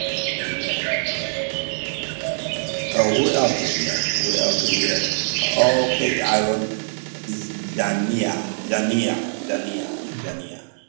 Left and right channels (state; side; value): silent; left; digital silence